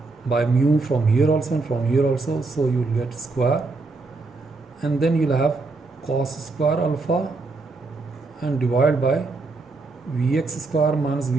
by mu from here also and from here also, so you will get square, and then you'll have cos square alpha and divided by Vx square minus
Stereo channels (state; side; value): quieter; left; 3.6 dB